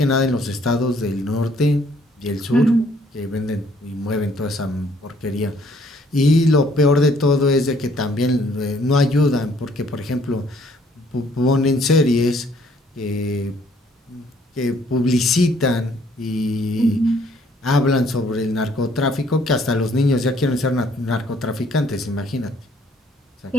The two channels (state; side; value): normal; both; correlation 0.63